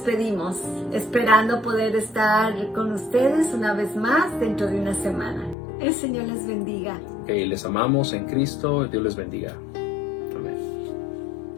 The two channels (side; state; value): right; drops out; at 5.6 s